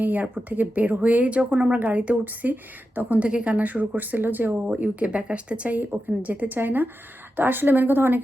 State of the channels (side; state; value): both; normal; correlation 0.90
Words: এয়ারপোর্ট থেকে বের হয়েই যখন আমরা গাড়িতে উঠছি তখন থেকে কান্না শুরু করছিল যে ও ইউকে ব্যাক আসতে চাই, ওখানে যেতে চায় না। তো আসলে মেন কথা